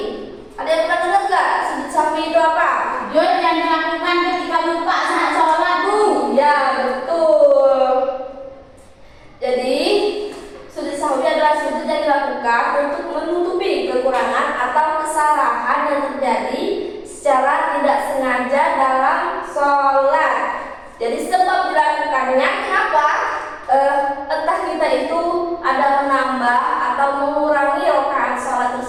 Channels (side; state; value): both; identical; correlation 1.00